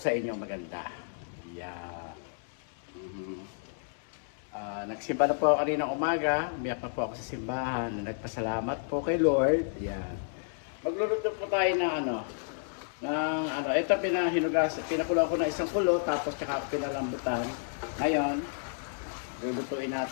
inyo maganda. Yeah. Nagsimba na po ako kanina umaga. Umiyak na po ako sa simbahan. Nagpasalamat po kay Lord. Yan. Magluluto po tayo ito pinakulo ko na isang kulo, tapos tsaka pinalambutan. Ngayon, lulutuin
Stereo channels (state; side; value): silent; right; 57 dB below the other